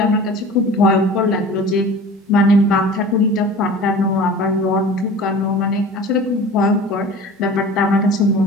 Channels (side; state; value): both; normal; correlation 0.40